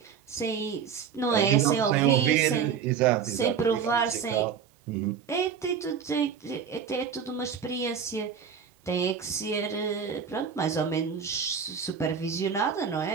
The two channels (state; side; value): quieter; left; 7.0 dB